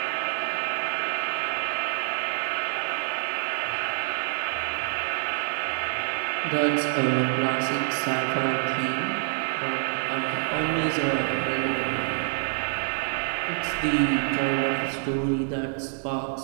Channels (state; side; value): silent; left; 57 dB below the other